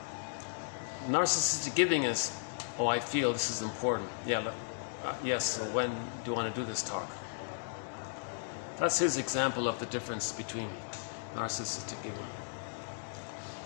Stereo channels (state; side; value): silent; right; digital silence